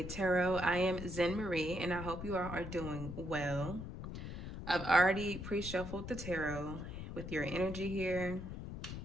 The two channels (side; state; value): left; noise; rumble, 8 dB below the sound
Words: Tarot. I am Zen Marie, and I hope you all are doing well. I've already pre-shuffled the tarot with your energy here,